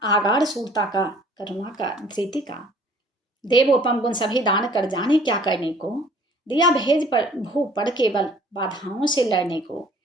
आगार सूरता का करुणा का धृति का। देवोपम गुण सभी दान कर जाने क्या करने को, दिया भेज पर भू पड़ केवल बाधाओं से लड़ने को।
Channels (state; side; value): normal; both; correlation 0.54